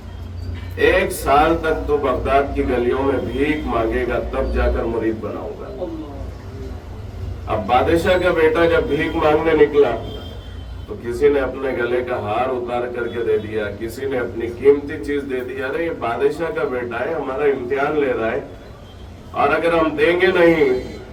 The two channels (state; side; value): identical; both; correlation 1.00